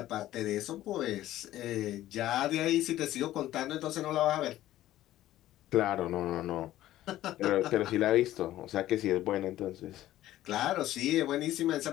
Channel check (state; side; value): quieter; right; 14.2 dB